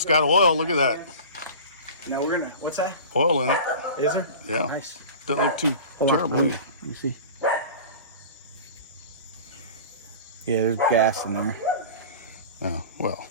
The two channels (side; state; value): both; inverted; correlation -0.36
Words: got oil. Look at that. Now we're gonna. What's that? Oil in it. Is there? Yeah. Nice. Doesn't look too Hold on, terrible. let me see. Yeah, there's gas in there. Oh, well.